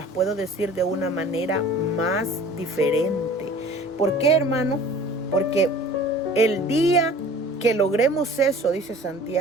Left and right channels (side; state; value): both; normal; correlation 0.45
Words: puedo decir de una manera más diferente. ¿Por qué, hermano? Porque el día que logremos eso, dice